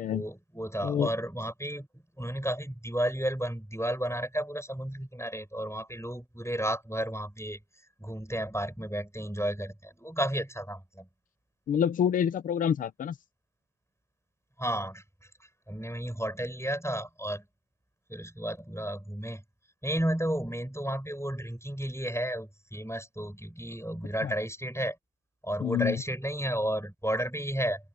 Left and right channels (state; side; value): normal; both; correlation 0.68